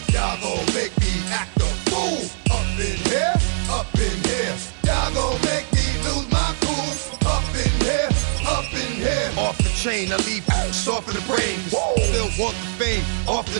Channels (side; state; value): left; silent; digital silence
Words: Y'all gon' make me act a fool. Up in here, up in here. Y'all gon' make me lose my cool. Up in here, up in here. Off the chain, I leave soft in the brain. Still want the fame, off